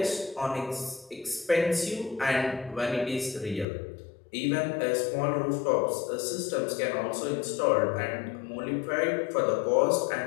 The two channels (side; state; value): right; drops out; at 3.7 s